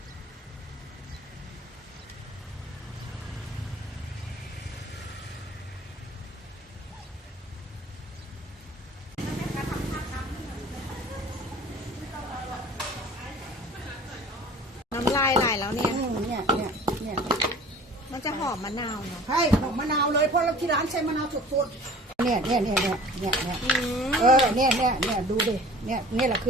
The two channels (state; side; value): normal; both; correlation 0.45